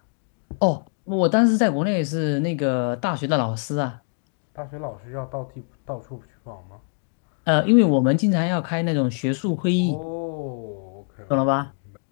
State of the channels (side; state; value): right; silent; 63 dB below the other